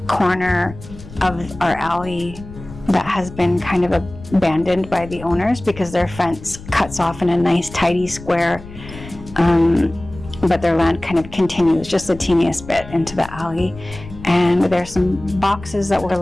corner of our alley that has been kind of abandoned by the owners because their fence cuts off in a nice tidy square, but their land kind of continues just the teeniest bit into the alley. And there's some boxes that were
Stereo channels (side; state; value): left; noise; rumble, 15 dB below the sound